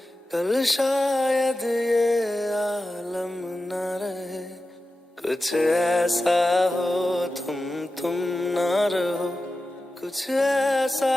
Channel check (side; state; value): both; normal; correlation 0.93